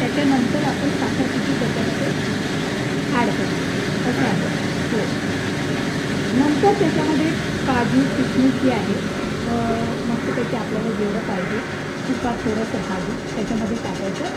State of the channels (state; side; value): identical; both; correlation 1.00